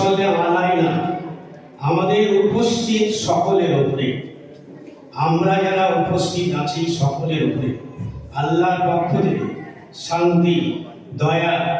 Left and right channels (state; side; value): identical; both; correlation 1.00